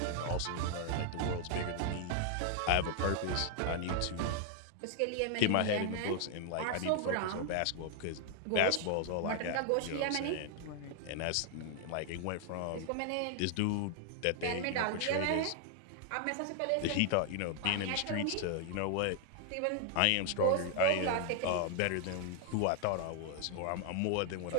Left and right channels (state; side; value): different; both; correlation 0.00